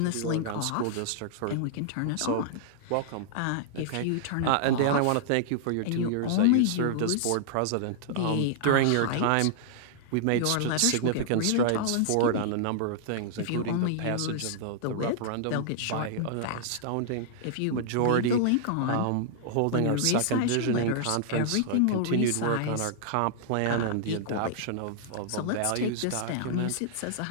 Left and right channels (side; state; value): both; different; correlation -0.01